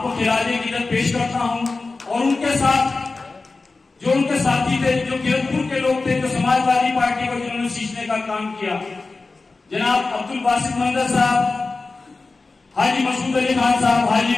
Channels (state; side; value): quieter; right; 3.8 dB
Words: खिराजे की इज्जत पेश करता हूं और उनके साथ जो उनके साथी थे, जो किरतपुर के लोग थे, जो समाजवादी पार्टी को जिन्होंने सींचने का काम किया, जनाब अब्दुल बासित मंदर साहब, हाजी मसूद अली खान साहब, हाजी